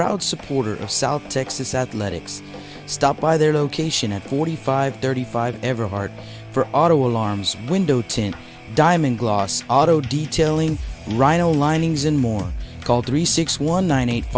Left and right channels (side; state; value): both; identical; correlation 1.00